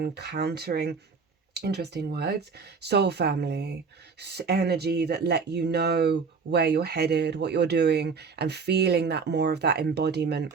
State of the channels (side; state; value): left; quieter; 5.2 dB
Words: countering, interesting words, soul family, energy that let you know where you're headed, what you're doing, and feeling that more of that embodiment